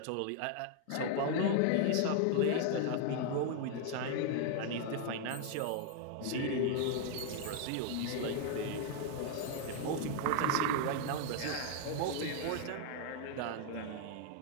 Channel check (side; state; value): both; different; correlation 0.00